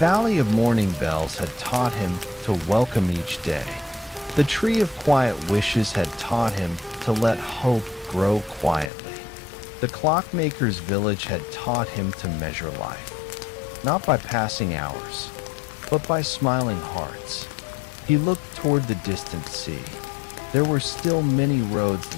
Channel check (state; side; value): drops out; right; at 8.9 s